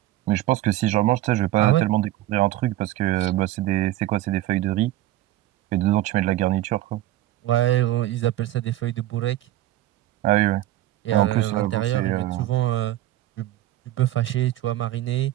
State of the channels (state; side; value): quieter; left; 14.8 dB